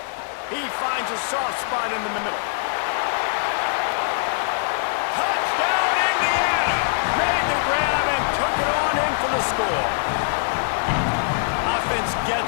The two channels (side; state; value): right; silent; digital silence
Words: He finds a soft spot in the middle. Touchdown, Indiana! Made the grab and took it on in for the score. Offense